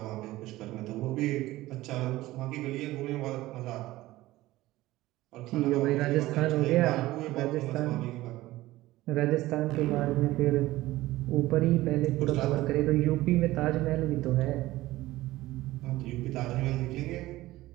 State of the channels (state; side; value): quieter; left; 17.3 dB